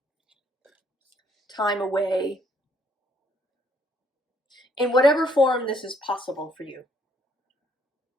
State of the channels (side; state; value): both; normal; correlation 0.67